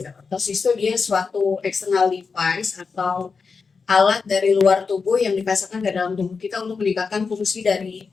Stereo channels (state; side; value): quieter; right; 5.0 dB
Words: Ortosis itu dia suatu external device atau alat dari luar tubuh yang dipasangkan ke dalam tubuh kita untuk meningkatkan fungsi dari